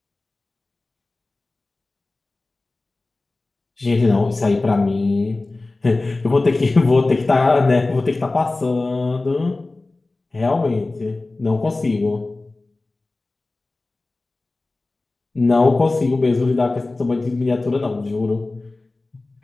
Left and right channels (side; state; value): right; quieter; 3.2 dB